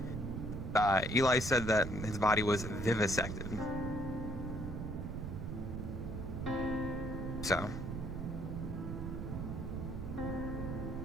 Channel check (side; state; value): right; noise; rumble, 5 dB below the sound